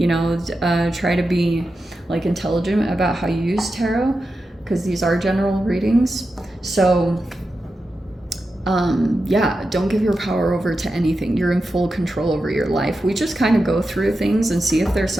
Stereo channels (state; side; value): normal; both; correlation 0.90